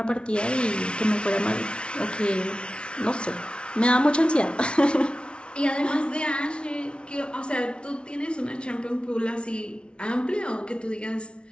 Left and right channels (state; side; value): late; right; 0.058 ms